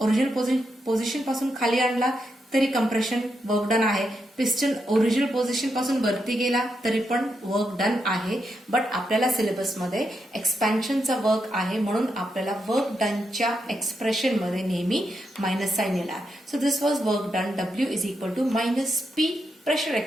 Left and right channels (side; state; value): both; normal; correlation 0.83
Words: ओरिजिनल पोझिशन पासून खाली आणला तरी कंप्रेशन वर्क डन आहे. पिस्टन ओरिजिनल पोझिशन पासून वरती गेला तरी पण वर्क डन आहे. बट आपल्याला सिलेबसमध्ये एक्सपॅन्शनचा वर्क आहे म्हणून आपल्याला वर्क डनच्या एक्सप्रेशन मध्ये नेहमी मायनस साइन येणार. So this was work done. W is equal to minus P pressure